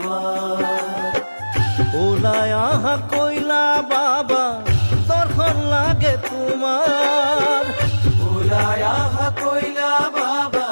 ওলাই আহা কইলা বাবা দৰ্শন লাগে তোমাৰ। ওলাই আহা কইলা বাবা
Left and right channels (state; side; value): inverted; both; correlation -1.00